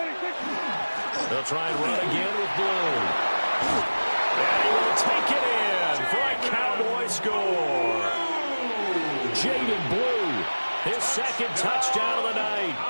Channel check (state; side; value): inverted; both; correlation -1.00